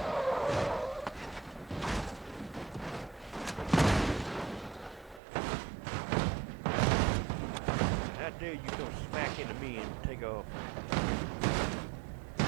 How dare you come smack into me and take off?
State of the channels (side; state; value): left; drops out; at 5.2 s